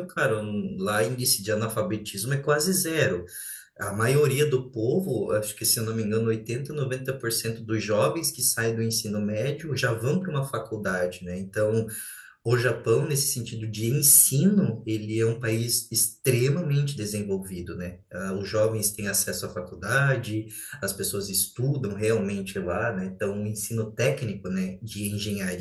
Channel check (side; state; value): both; identical; correlation 1.00